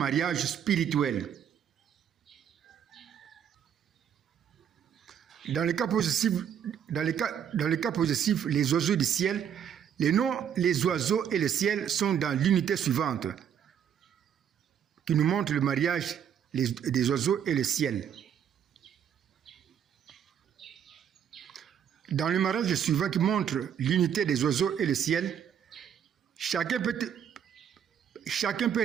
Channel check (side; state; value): left; quieter; 8.7 dB